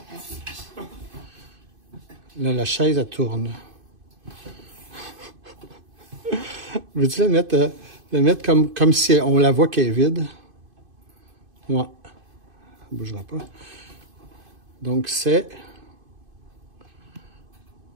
Là, la chaise, elle tourne. Veux-tu la mettre comme si on la voit qu'elle est vide? Ouais. Elle ne bougera pas. Donc, c'est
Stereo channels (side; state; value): left; late; 2.5 ms